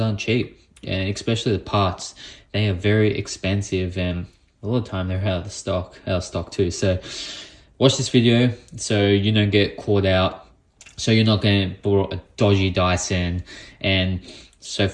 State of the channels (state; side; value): identical; both; correlation 1.00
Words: aren't cheap, and especially the parts. They are very expensive, and a lot of the time they're out of stock too. So watch this video so you don't get caught out, so you're not going to borrow a dodgy Dyson and so